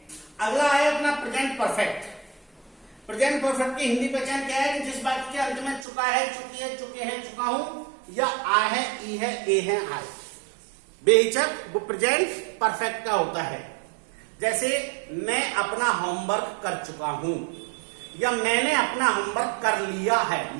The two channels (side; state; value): left; drops out; at 5.9 s